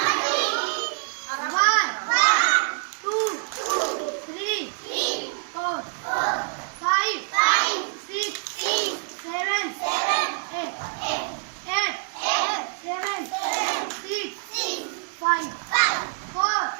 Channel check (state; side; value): silent; left; digital silence